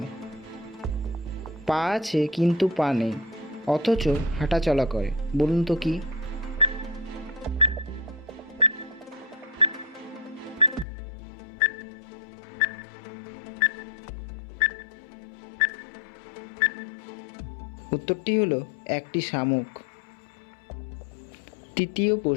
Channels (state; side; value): drops out; right; at 10.9 s